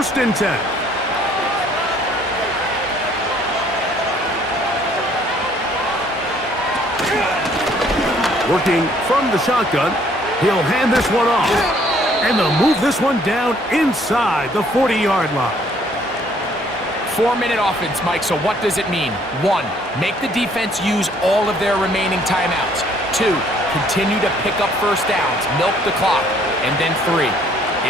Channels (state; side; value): normal; both; correlation 0.62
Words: and 10. Working from the shotgun, he'll hand this one off. And they'll move this one down inside the 40-yard line. 4-minute offense, Mike, so what does it mean? 1, make the defense use all of their remaining timeouts. 2, continue to pick up first downs, milk the clock. And then 3,